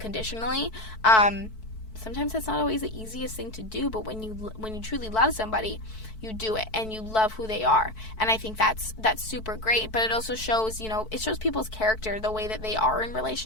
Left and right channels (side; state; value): right; late; 4.6 ms